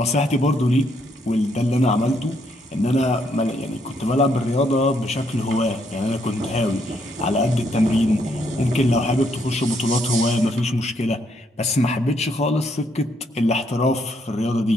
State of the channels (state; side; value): normal; both; correlation 0.73